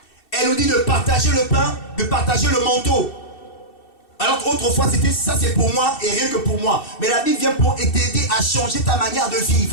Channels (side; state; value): right; late; 2.7 ms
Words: Elle nous dit de partager le pain, de partager le manteau. Alors qu'autrefois, c'était ça c'est pour moi et rien que pour moi. Mais la Bible vient pour t'aider à changer ta manière de